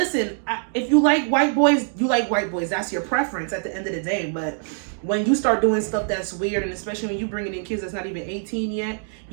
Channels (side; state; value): left; silent; digital silence